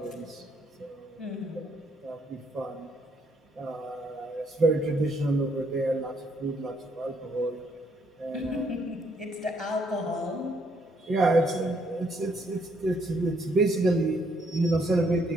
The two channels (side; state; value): both; normal; correlation 0.70